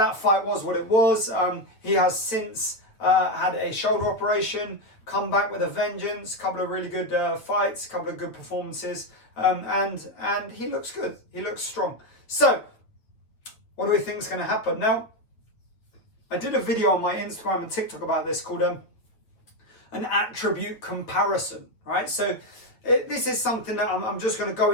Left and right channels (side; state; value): right; late; 8.8 ms